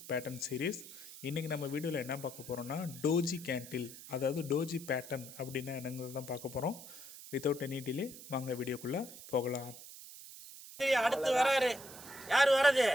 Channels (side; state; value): right; noise; hiss, 15 dB below the sound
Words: pattern series. இன்றைக்கி நம்ம வீடியோவில் என்ன பார்க்க போகிறோம்னா, டோஜி கேண்டில், அதாவது டோஜி பேட்டர்ன் அப்படின்னா என்னங்கிறது தான் பார்க்க போகிறோம். வித்தவுட் எனி டிலே வாங்க வீடியோக்குள்ள போகலாம். அடுத்து வராரு. யார் வரது?